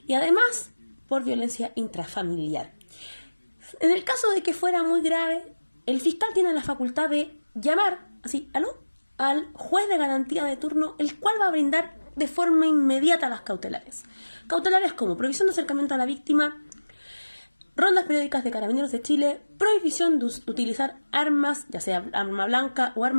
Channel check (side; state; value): both; inverted; correlation -1.00